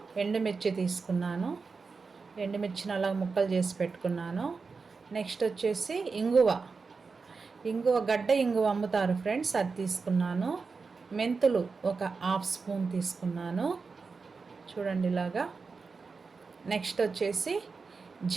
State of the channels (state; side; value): quieter; left; 4.7 dB